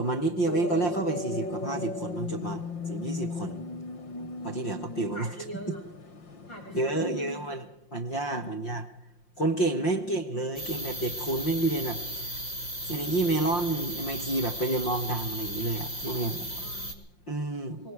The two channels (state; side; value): late; right; 5.7 ms